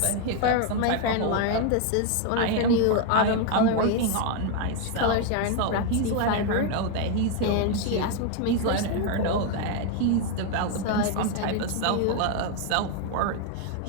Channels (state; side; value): different; both; correlation 0.01